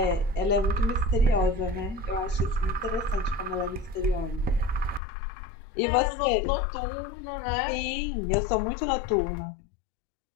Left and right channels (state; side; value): drops out; right; at 5.0 s